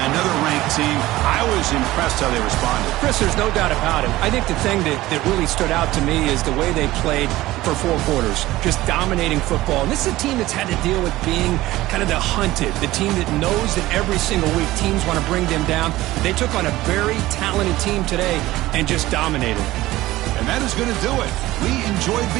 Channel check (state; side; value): quieter; left; 17.1 dB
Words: another ranked team. I was impressed how they responded. Chris, there's no doubt about it. I think the thing that really stood out to me is the way they played for 4 quarters, just dominating football. And this is a team that's had to deal with being kind of the hunted, the team that knows that every single week teams want to bring them down. They took on a very talented team today and just dominated. And that is going to do it. We enjoyed